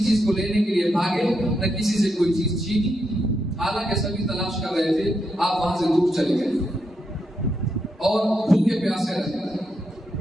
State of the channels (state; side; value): normal; both; correlation 0.82